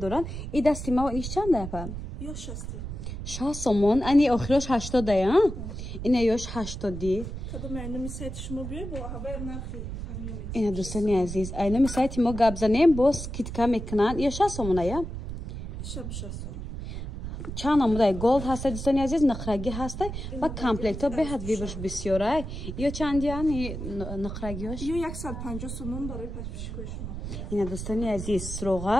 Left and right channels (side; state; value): right; noise; rumble, 7 dB below the sound